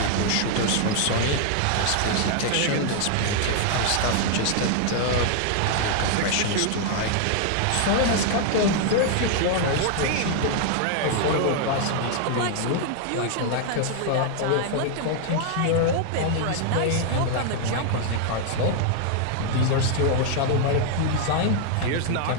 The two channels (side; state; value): both; different; correlation 0.00